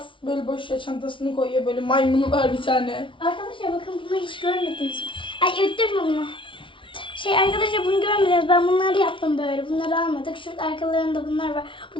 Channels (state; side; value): late; right; 0.25 ms